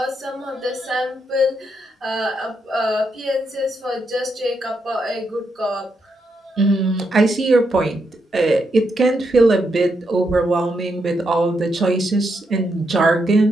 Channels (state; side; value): normal; both; correlation 0.81